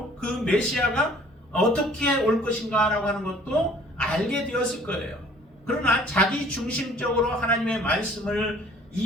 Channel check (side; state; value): both; normal; correlation 0.53